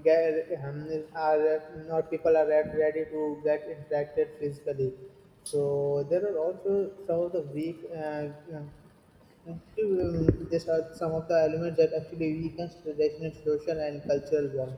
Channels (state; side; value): identical; both; correlation 1.00